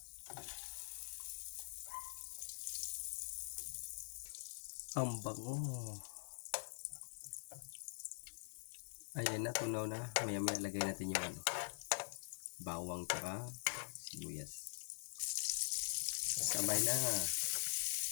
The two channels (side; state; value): right; silent; digital silence